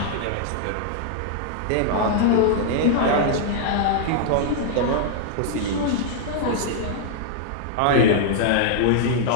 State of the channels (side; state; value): both; different; correlation -0.01